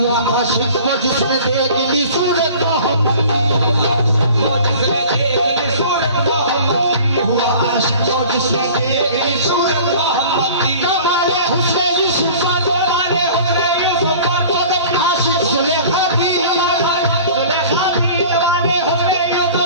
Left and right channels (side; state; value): both; inverted; correlation -0.44